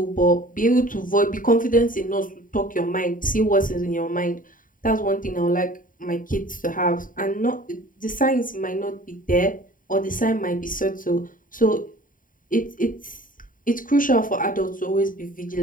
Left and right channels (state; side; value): late; right; 0.39 ms